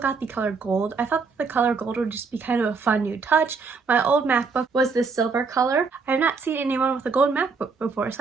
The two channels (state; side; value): quieter; left; 4.8 dB